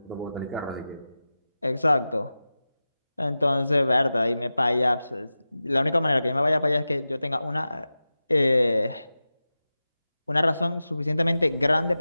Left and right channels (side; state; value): both; inverted; correlation -0.95